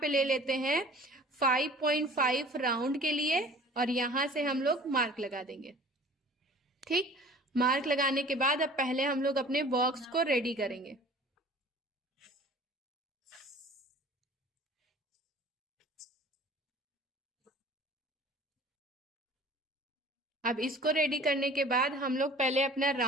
पे ले लेते हैं 5.5 राउंड के लिए, और यहां से हम लोग मार्क लगा देंगे। ठीक, मार्क लगाने के बाद अब पहले हम लोग अपने बॉक्स को रेडी करेंगे। अब इसको रेडी करने के बाद हम लोग पहले अपना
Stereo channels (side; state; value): both; normal; correlation 0.46